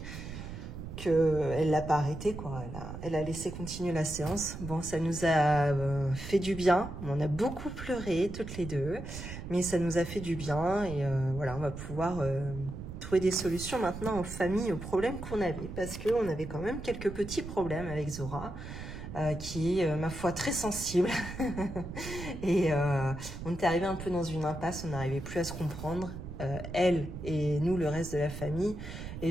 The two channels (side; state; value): right; noise; rumble, 9 dB below the sound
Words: qu'elle l'a pas arrêté, quoi. Elle a laissé continuer la séance. Bon, ça nous a fait du bien. On a beaucoup pleuré, toutes les deux. Mais ça nous a fait du bien. Et voilà, on va pouvoir trouver des solutions maintenant aux familles, aux problèmes qu'on avait. Parce qu'on avait quand même quelques petits problèmes avec Zora. Qui est, ma foi, très sensible. Et on était arrivé un peu dans une impasse. On n'arrivait plus à se comprendre. Elle et nous, le reste de la famille.